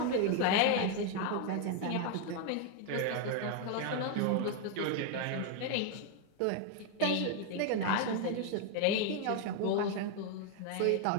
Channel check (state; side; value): different; both; correlation 0.01